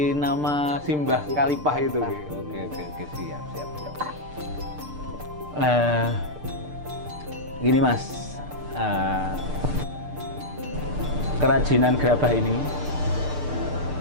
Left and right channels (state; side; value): late; left; 6.7 ms